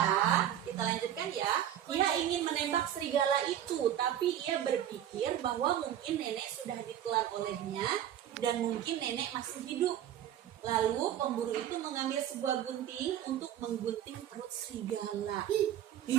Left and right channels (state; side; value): quieter; left; 10.9 dB